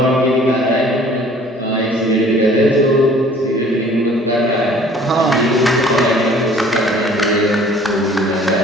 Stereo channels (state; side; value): normal; both; correlation 0.52